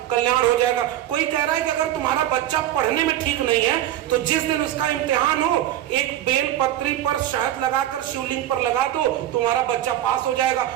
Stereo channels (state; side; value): quieter; left; 12.6 dB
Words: कल्याण हो जाएगा, कोई कह रहा है कि अगर तुम्हारा बच्चा पढ़ने में ठीक नहीं है तो जिस दिन उसका इम्तिहान हो एक बेल पत्री पर शहद लगाकर शिवलिंग पर लगा दो, तुम्हारा बच्चा पास हो जाएगा।